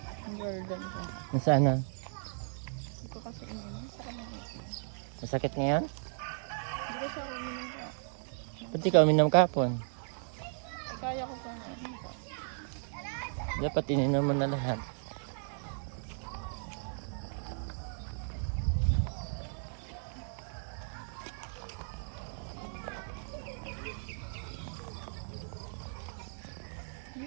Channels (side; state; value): left; silent; digital silence